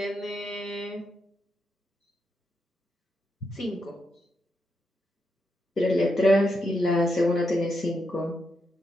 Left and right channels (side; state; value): both; normal; correlation 0.83